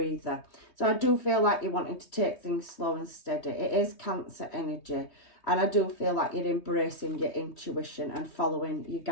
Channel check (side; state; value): right; late; 3.2 ms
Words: So I do feel like you're wanting to take things slow and steady. It is Cancer energy, and I do feel like you're embracing your intuition and following your